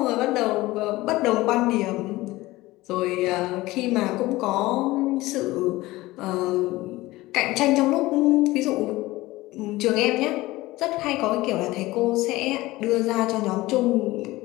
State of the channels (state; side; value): quieter; right; 18.9 dB